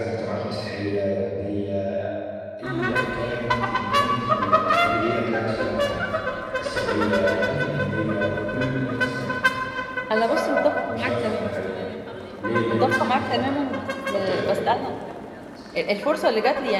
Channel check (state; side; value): identical; both; correlation 1.00